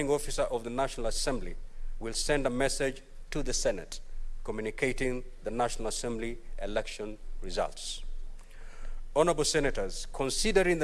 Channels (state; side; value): identical; both; correlation 1.00